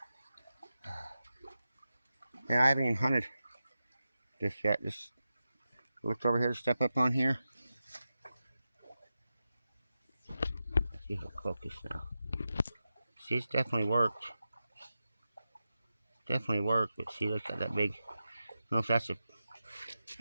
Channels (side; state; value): both; inverted; correlation -0.91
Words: And I haven't even hunted this yet. Just looked over here to step up on here. Let's see if it'll focus now. See, it's definitely worked. Definitely worked, but see, look at that big. I don't know if that's a.